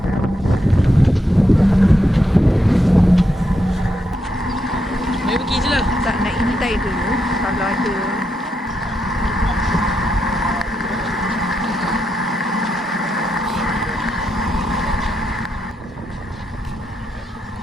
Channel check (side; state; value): both; normal; correlation 0.82